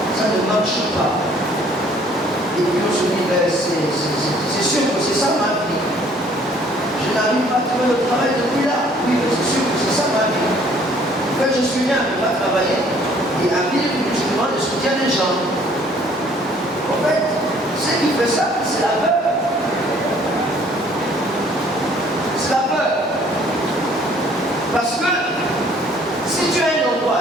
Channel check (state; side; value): normal; both; correlation 0.59